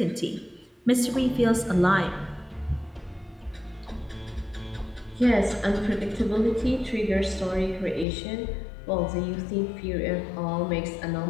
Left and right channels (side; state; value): right; drops out; at 8.1 s